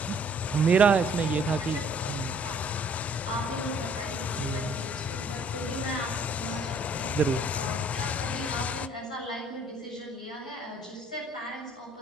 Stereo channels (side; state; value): both; normal; correlation 0.58